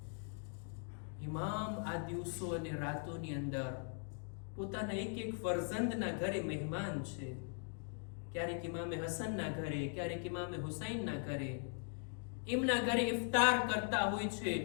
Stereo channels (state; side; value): silent; right; 51 dB below the other